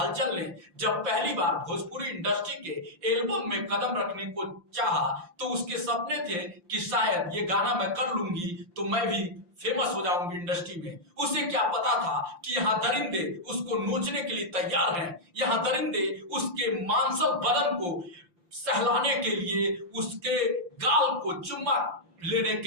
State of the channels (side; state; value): left; late; 5.8 ms